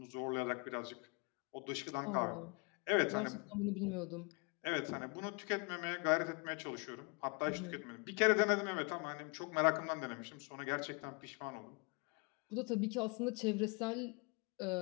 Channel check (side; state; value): right; quieter; 31.6 dB